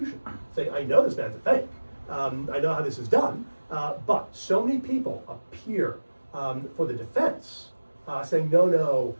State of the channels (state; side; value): inverted; both; correlation -1.00